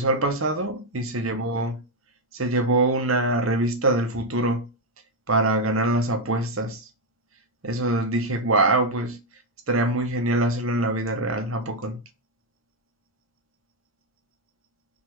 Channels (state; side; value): normal; both; correlation 0.02